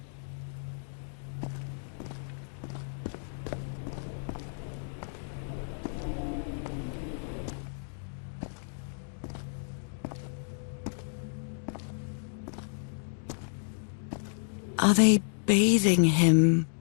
Are they bathing him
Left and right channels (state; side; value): silent; right; digital silence